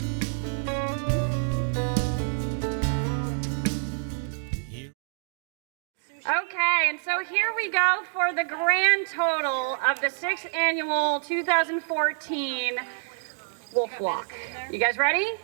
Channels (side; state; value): left; silent; digital silence